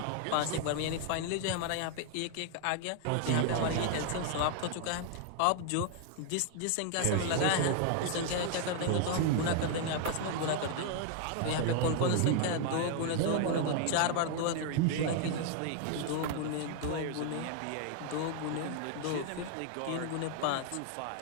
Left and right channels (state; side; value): different; both; correlation 0.00